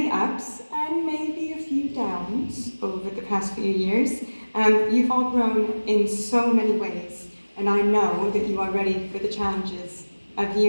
ups and maybe a few downs over the past few years, you've all grown in so many ways, and I know that you are ready for the challenges of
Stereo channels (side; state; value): both; inverted; correlation -1.00